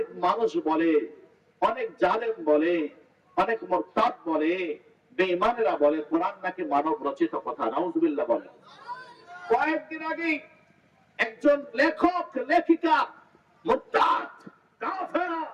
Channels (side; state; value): both; identical; correlation 1.00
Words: মানুষ বলে, অনেক জালেম বলে, অনেক মুরতাদ বলে, বেঈমানেরা বলে কোরআন নাকি মানব রচিত কথা। নাউজুবিল্লাহ বলে। কয়েকদিন আগে একজন লেখক লেখিকা মুরতাদ কাফেরা